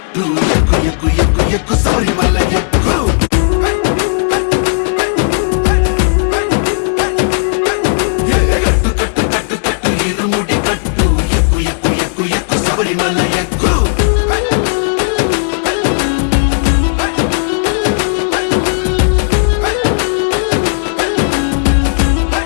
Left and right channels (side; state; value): right; silent; digital silence